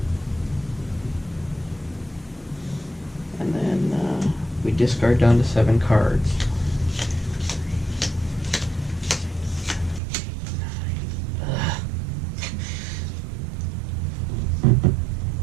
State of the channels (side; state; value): left; drops out; at 10.0 s